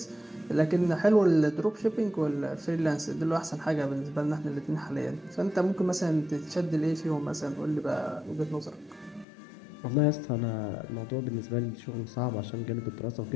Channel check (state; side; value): drops out; right; at 9.2 s